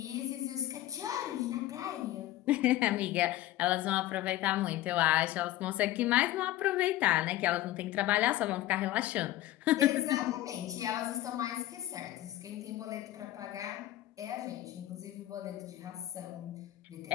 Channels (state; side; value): quieter; right; 15.1 dB